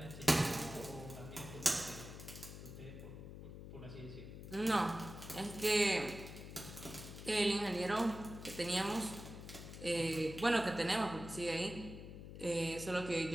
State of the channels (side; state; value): left; noise; hum, 11 dB below the sound